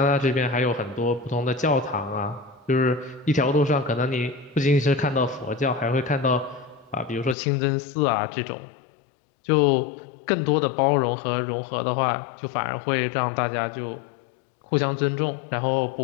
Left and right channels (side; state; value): right; drops out; at 7.4 s